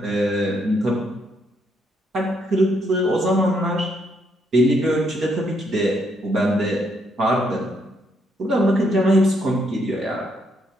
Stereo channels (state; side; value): normal; both; correlation 0.74